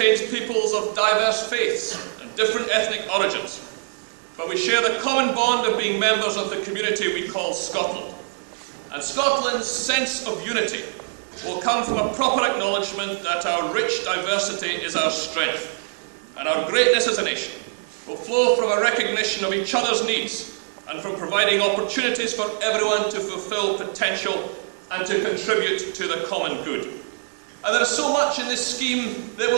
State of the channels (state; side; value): silent; left; 63 dB below the other